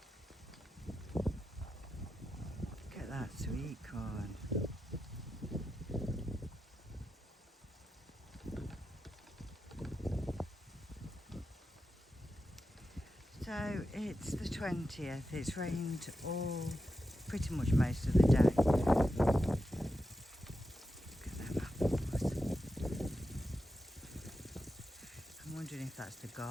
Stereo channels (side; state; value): both; normal; correlation 0.89